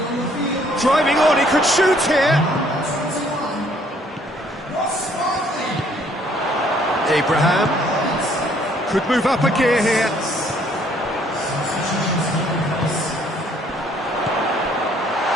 Driving on, he could shoot here. Abraham could move up a gear here.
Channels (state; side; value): normal; both; correlation 0.63